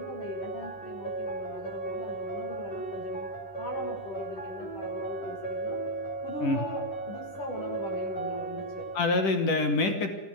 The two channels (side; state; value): right; late; 10 ms